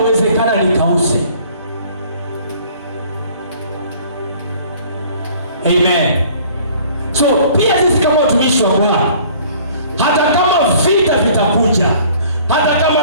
nikause. Amen. So pia sisi kama watumishi wa Bwana, hata kama vita vitakuja, hata kama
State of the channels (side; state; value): both; inverted; correlation -0.53